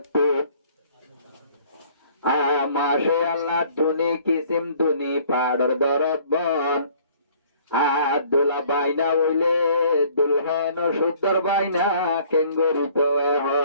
মাসে আল্লাহ দুনি কিসিম দুনি পাড়র দরদ বন দোলা বাইনা হইলে দুলহেন সুন্দর বাইনা কেঙ্গরিত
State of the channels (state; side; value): inverted; both; correlation -0.56